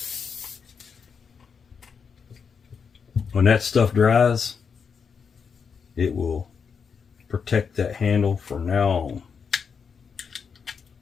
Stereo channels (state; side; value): quieter; right; 6.2 dB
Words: When that stuff dries, it will protect that handle from now on.